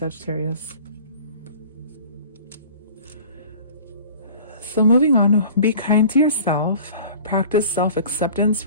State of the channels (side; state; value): both; inverted; correlation -0.44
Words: So moving on, be kind to yourself. Practice self-acceptance